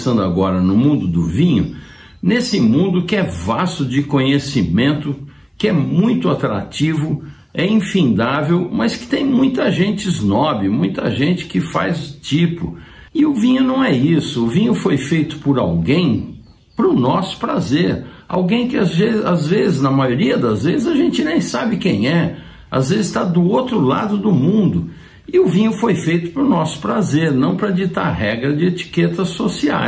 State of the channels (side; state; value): both; identical; correlation 1.00